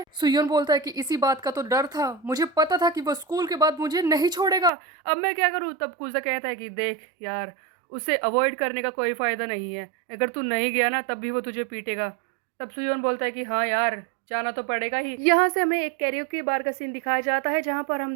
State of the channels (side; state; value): left; drops out; at 4.7 s